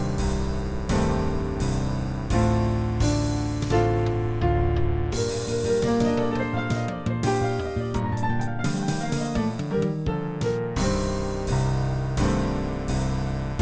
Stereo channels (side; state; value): both; identical; correlation 1.00